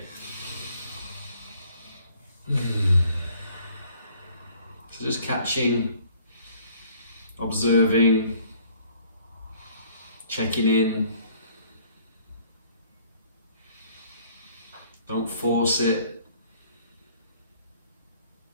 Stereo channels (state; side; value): inverted; both; correlation -0.59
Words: So just catching, observing, checking in. Don't force it.